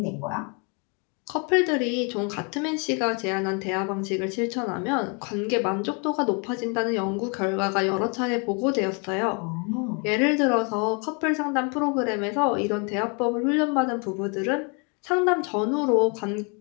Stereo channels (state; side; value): quieter; right; 34.5 dB